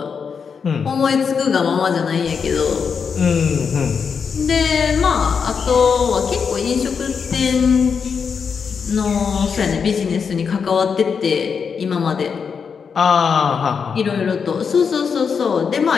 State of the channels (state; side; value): quieter; right; 6.2 dB